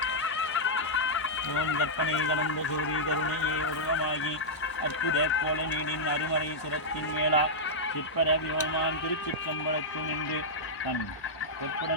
ஓம் கற்பனை கடந்த சோதி கருணையே உருவமாகி அற்புத கோல நீடின் அருமறை சிரத்தின் மேலா சிற்பர வியோமான் திருச்சிற்றம்பலத்து நின்று தன்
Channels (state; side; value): late; right; 1.0 ms